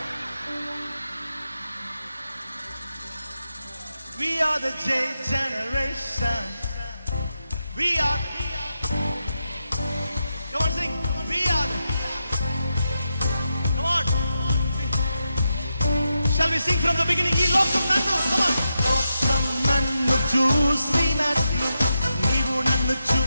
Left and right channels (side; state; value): both; inverted; correlation -0.87